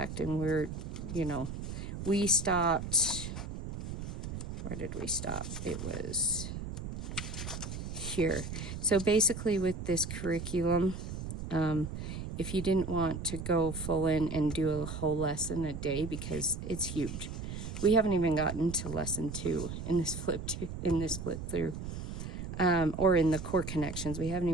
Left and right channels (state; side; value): noise; right; rumble, 7 dB below the sound